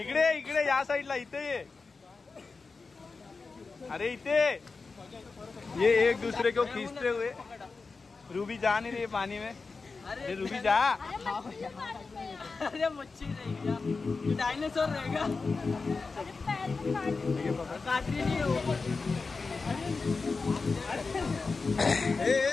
इकडे इकडे या साईडला, इथे ये. अरे इथे ये, एक दूसरे को खींचते हुए. रूबी जा नहीं रही पानी में. अरे रूबी जा. अरे मच्छी रहेगा, डायनासोर रहेगा. काटरी नहीं हो.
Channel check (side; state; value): right; quieter; 4.3 dB